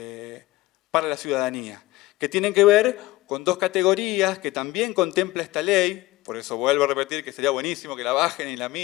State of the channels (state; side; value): quieter; right; 18.4 dB